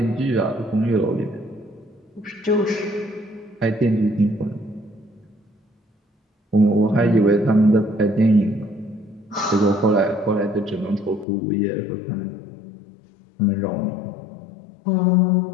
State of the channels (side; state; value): right; drops out; at 11.2 s